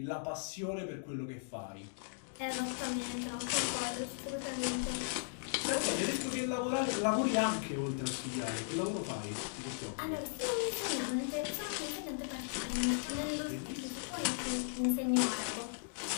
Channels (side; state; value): right; silent; digital silence